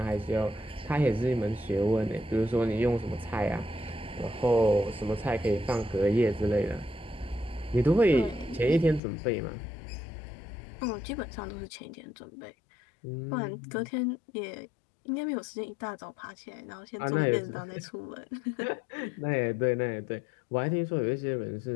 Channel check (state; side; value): drops out; right; at 9.0 s